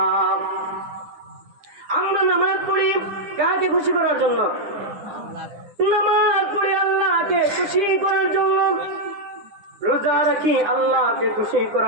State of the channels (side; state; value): left; late; 9.9 ms